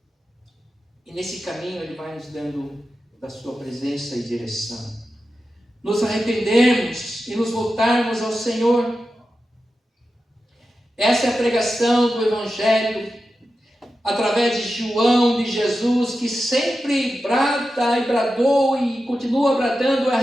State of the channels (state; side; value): normal; both; correlation 0.92